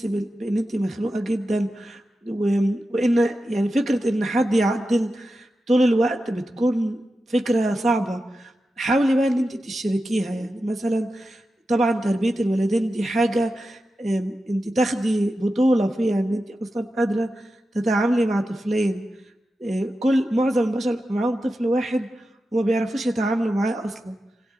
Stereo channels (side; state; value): both; normal; correlation 0.91